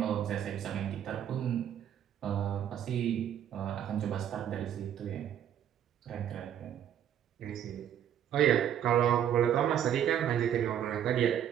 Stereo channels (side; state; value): left; quieter; 9.9 dB